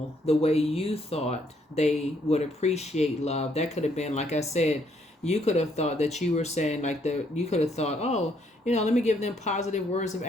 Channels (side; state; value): both; normal; correlation 0.70